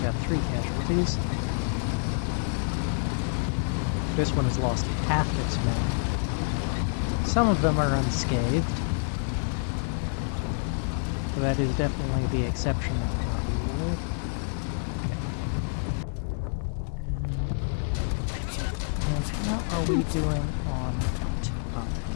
got 3 casualties. This one has lost half its men. Some of them are unscathed. So that is definitely the exception of the rule. And how are we doing on time?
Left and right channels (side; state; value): right; silent; 59 dB below the other